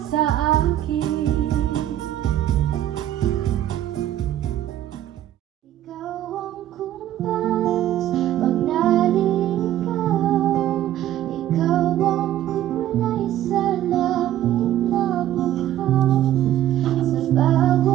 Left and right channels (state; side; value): quieter; left; 12.6 dB